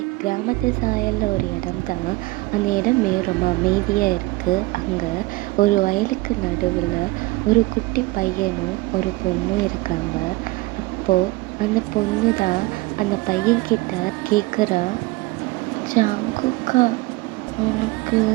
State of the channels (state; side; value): quieter; left; 20.9 dB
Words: கிராமத்து சாயலில் ஒரு இடம் தான். அந்த இடமே ரொம்ப அமைதியாக இருக்குது. அங்கே ஒரு வயலுக்கு நடுவில் ஒரு குட்டி பையனும் ஒரு பொண்ணும் இருக்காங்க. அப்போது அந்த பொண்ணு தான் அந்த பையன்கிட்ட கேட்குறா, ஜாங்குக்கா, உனக்கு